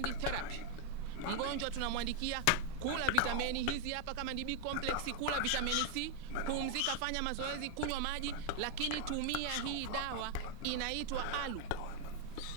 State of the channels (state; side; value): different; both; correlation 0.00